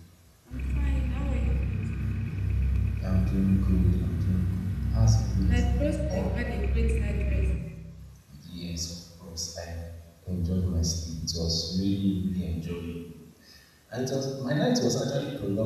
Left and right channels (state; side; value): identical; both; correlation 1.00